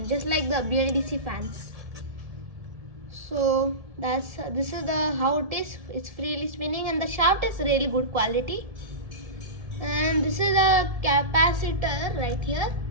just like the BLDC fans. So this is how it is. It's freely spinning and the shaft is really good quality. And this is a capacitor right here.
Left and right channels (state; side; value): late; left; 1.7 ms